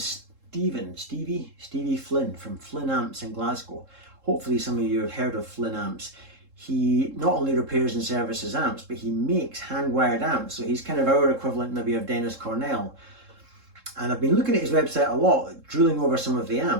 Stevie Flynn from Flynn Amps in Glasgow. Hopefully some of you have heard of Flynn Amps. He not only repairs and services amps, but he makes hand-wired amps. So he's kind of our equivalent maybe of Dennis Cornell. And I've been looking at his website a lot, drooling over some of the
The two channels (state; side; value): late; left; 3.7 ms